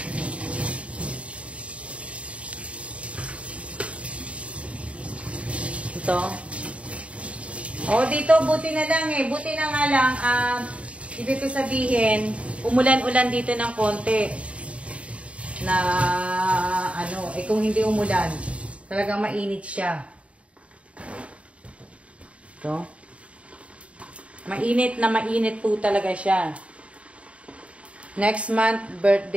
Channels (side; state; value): left; late; 0.063 ms